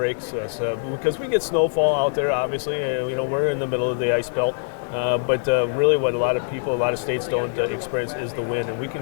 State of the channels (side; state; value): right; silent; digital silence